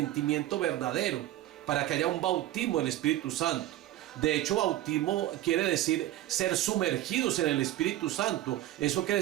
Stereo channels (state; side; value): quieter; left; 14.3 dB